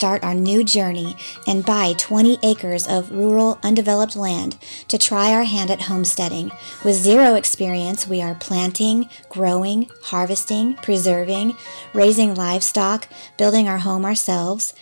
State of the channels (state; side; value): inverted; both; correlation -1.00